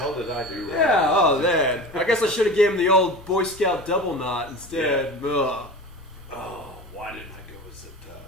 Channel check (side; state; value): both; normal; correlation 0.33